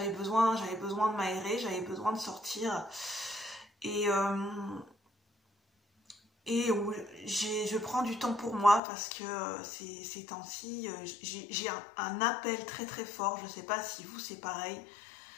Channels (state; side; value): drops out; right; at 8.8 s